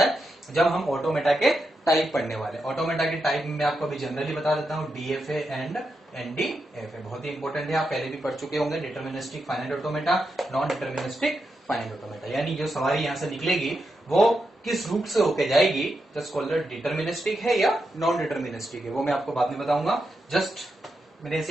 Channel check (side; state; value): both; normal; correlation 0.86